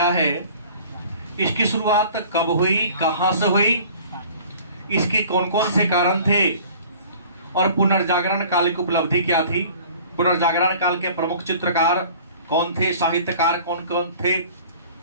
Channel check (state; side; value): inverted; both; correlation -0.47